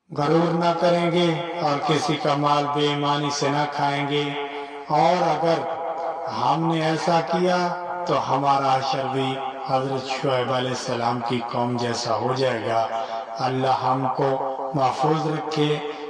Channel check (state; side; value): identical; both; correlation 1.00